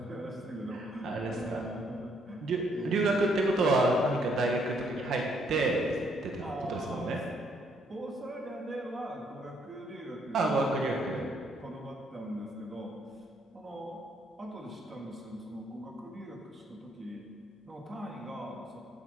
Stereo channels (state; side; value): normal; both; correlation 0.70